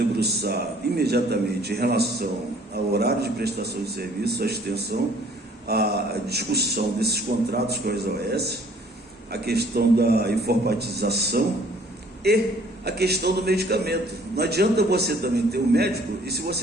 imediatamente em relação ao horário de prestação de serviço, a extensão, a discussão desses contratos com as OS, a questão da informatização e a questão do medicamento. Não adianta você também ter um médico e se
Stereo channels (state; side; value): normal; both; correlation 0.57